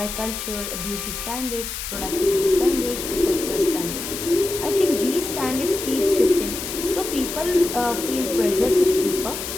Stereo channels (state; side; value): noise; left; hiss, 6 dB below the sound